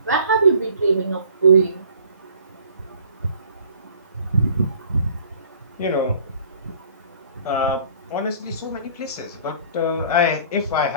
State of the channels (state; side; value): inverted; both; correlation -0.52